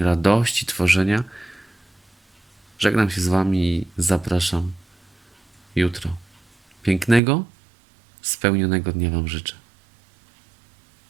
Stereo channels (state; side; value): drops out; left; at 7.2 s